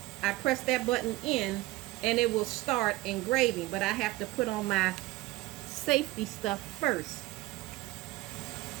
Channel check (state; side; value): quieter; left; 19.1 dB